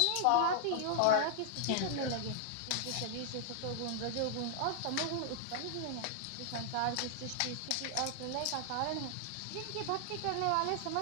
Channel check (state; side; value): different; both; correlation -0.01